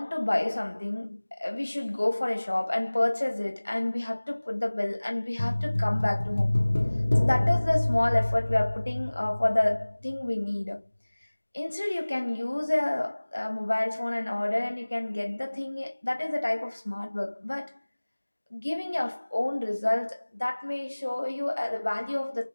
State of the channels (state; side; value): inverted; both; correlation -1.00